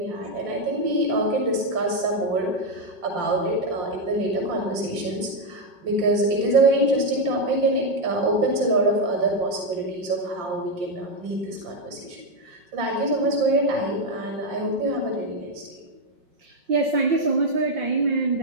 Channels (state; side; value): late; left; 5.7 ms